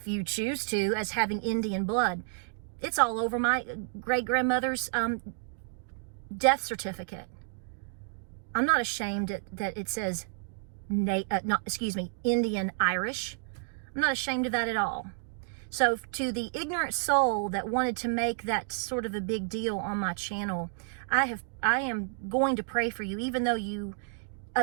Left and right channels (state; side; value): silent; left; digital silence